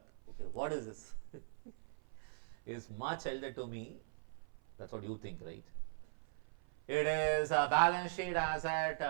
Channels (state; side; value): silent; left; 51 dB below the other